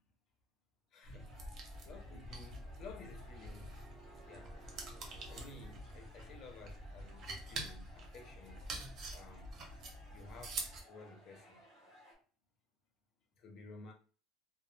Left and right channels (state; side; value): normal; both; correlation 0.58